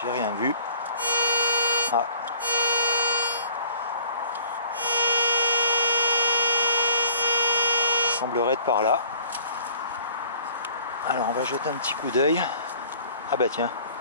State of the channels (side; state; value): both; inverted; correlation -0.53